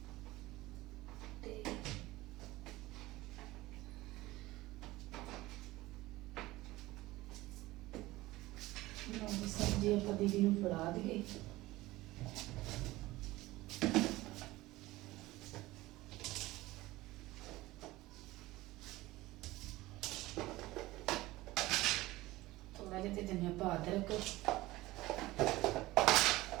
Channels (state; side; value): quieter; left; 18.6 dB